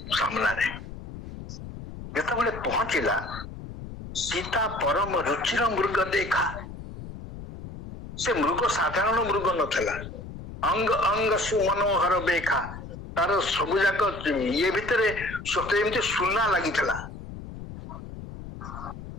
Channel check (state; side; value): noise; left; rumble, 12 dB below the sound